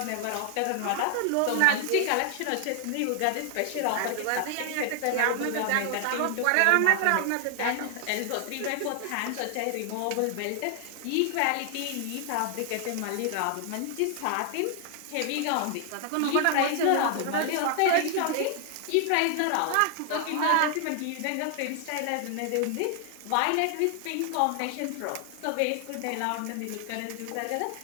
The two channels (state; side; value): different; both; correlation 0.00